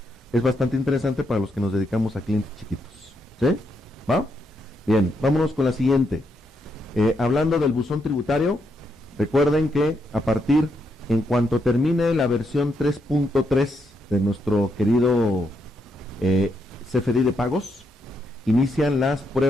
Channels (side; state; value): both; normal; correlation 0.79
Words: es bastante interesante para los que nos dedicamos a clientes chiquitos. ¿Sí? ¿Va? Bien, vámonos con la siguiente. Hablando del buzón tributario, recuerden que en cuanto termine la versión 3.3 de nuestro querido CFDI de pagos, inician las